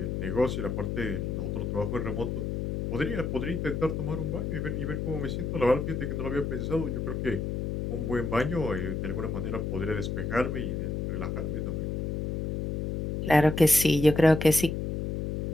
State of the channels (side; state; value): left; noise; hum, 2 dB below the sound